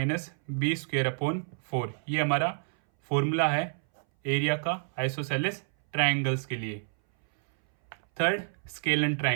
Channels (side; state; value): left; silent; 59 dB below the other